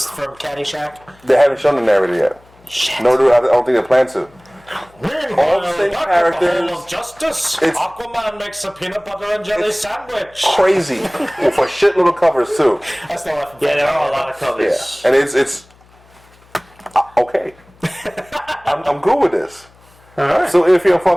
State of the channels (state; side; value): noise; left; hum, 28 dB below the sound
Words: from Caddyshack. They haven't shown the narrator yet. Shit. No, I don't think they plan to. All the same Hall characters. of Justice. It's- Aquaman makes a peanut butter and jelly sandwich. Crazy with a shitload of covers too. That's the one. Yeah, there are a lot of Yeah, covers. and it's okay. I'm good with this. Alright. So if you're